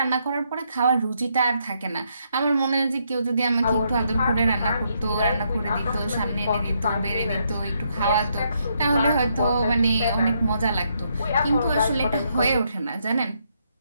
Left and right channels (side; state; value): both; inverted; correlation -0.76